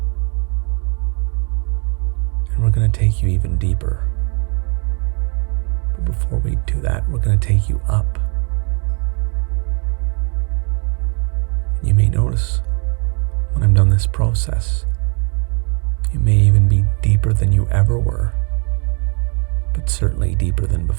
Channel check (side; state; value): left; quieter; 38.1 dB